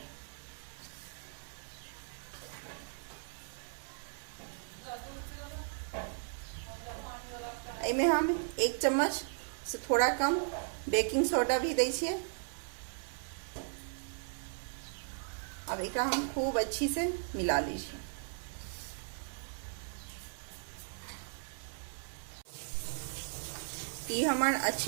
इमे हम 1 चम्मच से थोड़ा कम बेकिंग सोडा भी दे छिए। अब एक हम खूब अच्छी से मिला लीजिए। ये हमार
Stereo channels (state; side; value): silent; left; digital silence